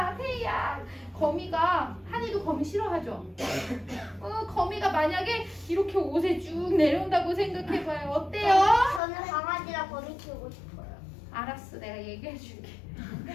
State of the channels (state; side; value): drops out; right; at 9.0 s